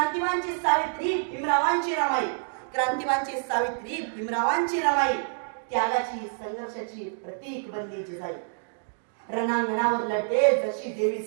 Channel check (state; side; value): silent; left; digital silence